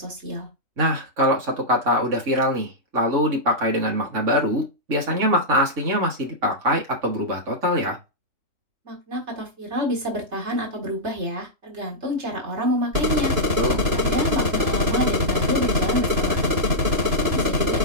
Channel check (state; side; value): late; left; 3.0 ms